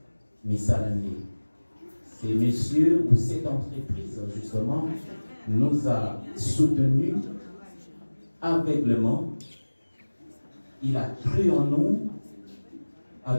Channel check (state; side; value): inverted; both; correlation -1.00